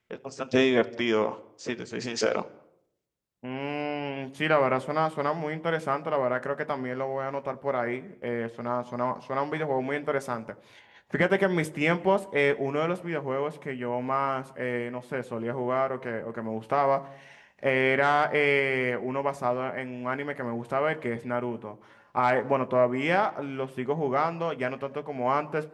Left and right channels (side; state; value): both; identical; correlation 1.00